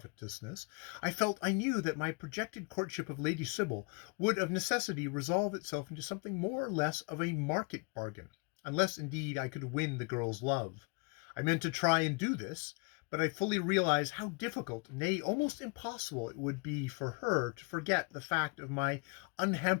I knew that my projected courtship of Lady Sybil would of necessity resolve itself into something more or less of a market bargain, unless indeed I could win the girl's love. I meant to try and do this, but I fully realized how difficult, nay, almost impossible it would be for her to forget the fact of my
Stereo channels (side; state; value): right; quieter; 33.8 dB